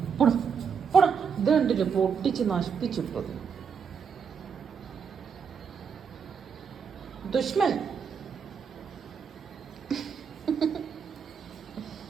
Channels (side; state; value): left; quieter; 6.6 dB